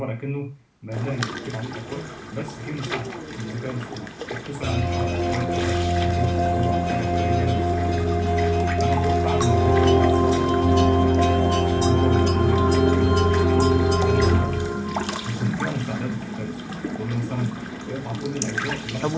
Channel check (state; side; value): identical; both; correlation 1.00